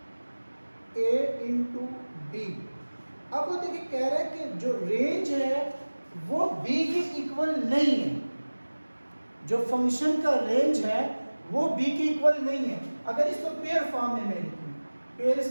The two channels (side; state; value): both; inverted; correlation -1.00